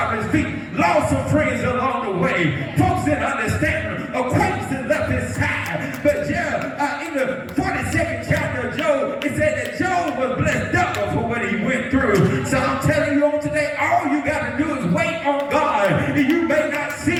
of his feet. Lost some friends along the way. Folks didn't understand him. Acquaintances left his side. But in the 42nd chapter of Job, it said that Job was blessed double for what he went through. So I'm telling you on today, all you got to do is wait on God. And you may not see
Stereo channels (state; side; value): identical; both; correlation 1.00